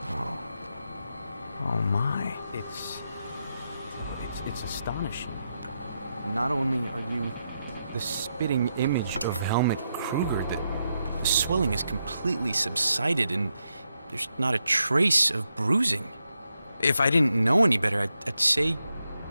Oh my. It's astonishing. Not only are you the spitting image of Helmut Kruger, the swelling has completely subsided and there's not a trace of bruising. If I didn't know any better, I'd say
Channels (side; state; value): both; inverted; correlation -0.84